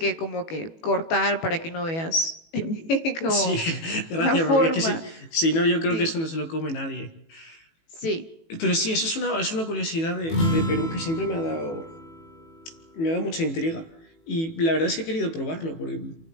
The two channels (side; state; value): right; late; 18 ms